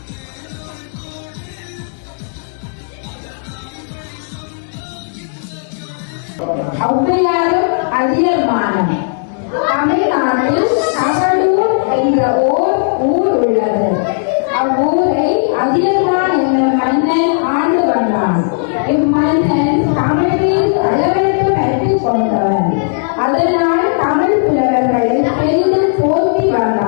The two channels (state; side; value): silent; right; digital silence